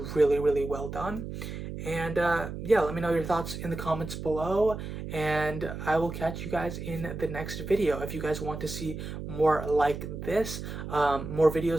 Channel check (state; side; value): noise; right; hum, 7 dB below the sound